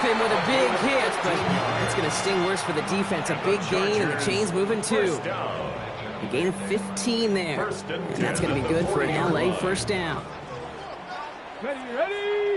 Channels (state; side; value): identical; both; correlation 1.00